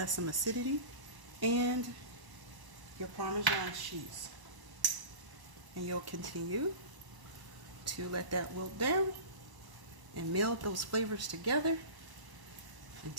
some acidity, and your Parmesan cheese. And you'll continue to let that wilt down and meld those flavors together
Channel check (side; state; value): left; late; 1.0 ms